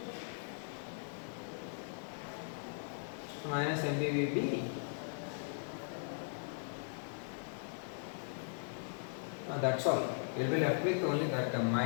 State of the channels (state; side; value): silent; right; digital silence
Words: Minus mb vb. That's all. You will be left with only that term,